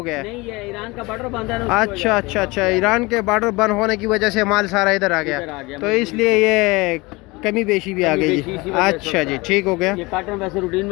गया है? नहीं, ये ईरान का बॉर्डर बंद है ना, उसकी अच्छा अच्छा अच्छा, ईरान के बॉर्डर बंद होने की वजह से माल सारा इधर आ इधर आ गया, गया, तो इसलिए ये कमी बेशी भी आ कमी गई बेशी जी। इसी वजह से अच्छा होता जी, है। ठीक हो गया। ये काटन वैसे रूटीन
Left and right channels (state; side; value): quieter; right; 23.7 dB